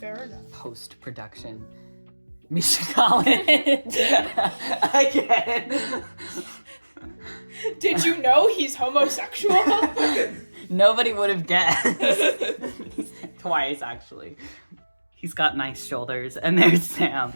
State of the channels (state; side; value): inverted; both; correlation -1.00